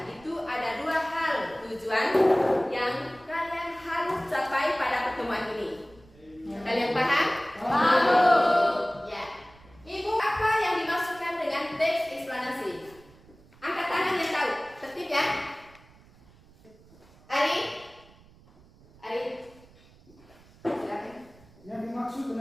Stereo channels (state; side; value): noise; right; rumble, 26 dB below the sound